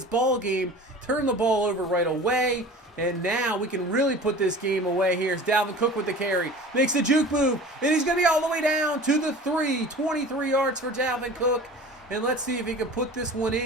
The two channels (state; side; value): normal; both; correlation 0.40